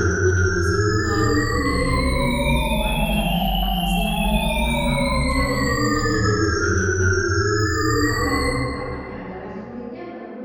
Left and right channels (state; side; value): identical; both; correlation 1.00